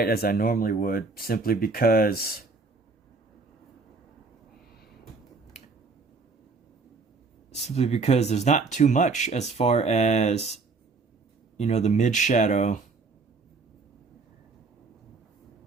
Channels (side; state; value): left; quieter; 4.0 dB